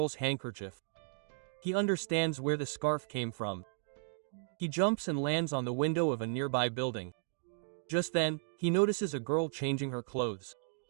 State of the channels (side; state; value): left; silent; digital silence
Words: handkerchief. He understands where the scarf came from. He jumps and lands on the window of a nearby building. Just then, he notices a girl changing her clothes.